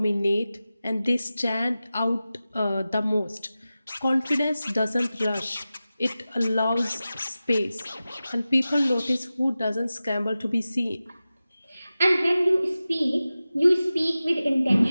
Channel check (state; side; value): inverted; both; correlation -0.95